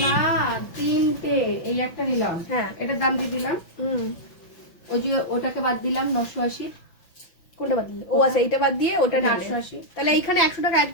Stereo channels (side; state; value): right; late; 5.9 ms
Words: না, 3টে, এই একটা নিলাম। হ্যাঁ, এটার দাম দিয়ে দিলাম। ওই যে ওটাকে বাদ দিলাম 980। কোনটা বাদ দিলে? ও আচ্ছা, এইটা বাদ দিয়ে ওটা 880। তাহলে এইখানে 100 টাকা অ্যাড